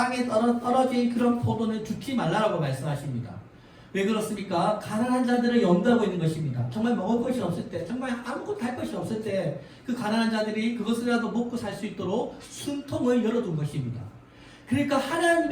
떨어진 그런 포도는 줍지 말라라고 말씀하십니다. 왜 그렇습니까? 가난한 자들을 염두하고 있는 것입니다. 정말 먹을 것이 없을 때, 정말 아무것도 할 것이 없을 때 그 가난한 자들이 그것이라도 먹고 살 수 있도록 숨통을 열어둔 것입니다. 그러니까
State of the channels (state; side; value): identical; both; correlation 1.00